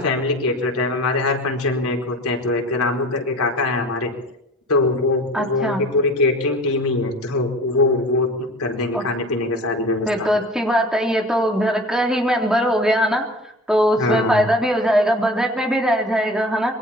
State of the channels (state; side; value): normal; both; correlation 0.40